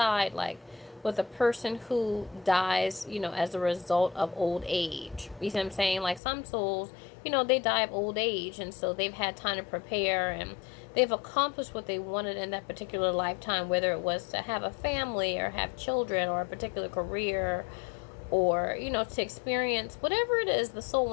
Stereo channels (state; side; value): drops out; right; at 6.2 s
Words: like with a person who dies, as a result of old age. You see what I'm saying? Like some souls, they die of old age, and so they've had time to prepare, and they've accomplished what they wanted in that particular lifetime, whether it was to have a family or have children or a particular career, or to experience whatever it is the soul